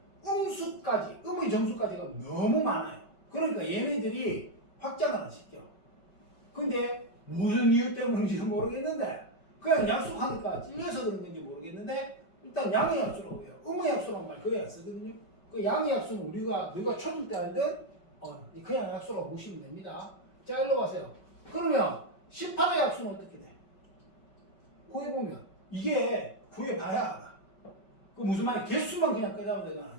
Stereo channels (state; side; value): late; right; 5.3 ms